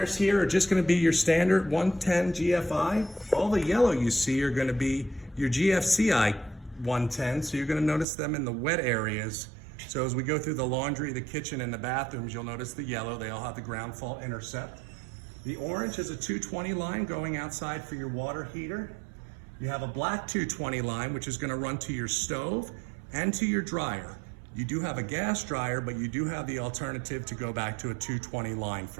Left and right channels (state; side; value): drops out; left; at 8.1 s